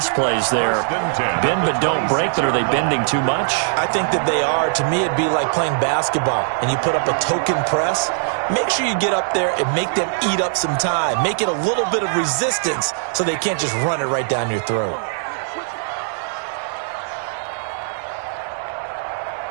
plays there. Bend but don't break, but are they bending too much? I think that they are. To me, it'd be like playing basketball, and you put up a token press. Make sure you get up there and make them eat up some time. Make it a little bit of resistance so they can't just run it right down your throat.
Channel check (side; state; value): left; silent; digital silence